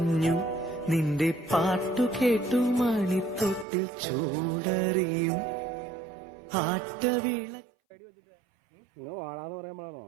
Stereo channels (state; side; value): drops out; left; at 3.7 s